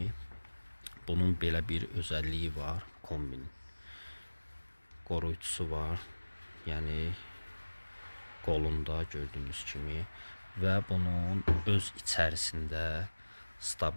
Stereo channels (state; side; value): inverted; both; correlation -1.00